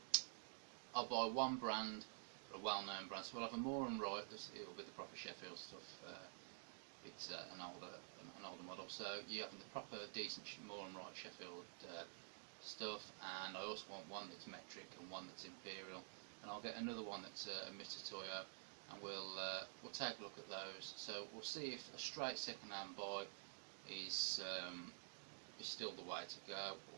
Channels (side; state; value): left; silent; digital silence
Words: I'll buy one brand, or a well-known brand. So we'll have a Moore and Wright. It'll be the proper Sheffield stuff. It's an older model. So you have the proper, decent Moore and Wright Sheffield stuff. And I also want one that's metric and one that's imperial. And I'll get another one that's a Mitutoyo, and we'll take a look at those. So we'll see if a straight second-hand buy is still the way to go,